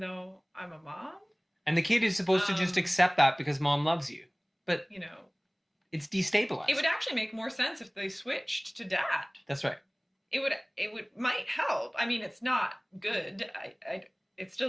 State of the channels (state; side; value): identical; both; correlation 1.00